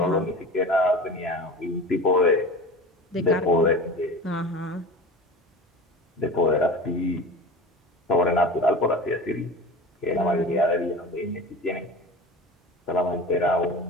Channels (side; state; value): both; normal; correlation 0.35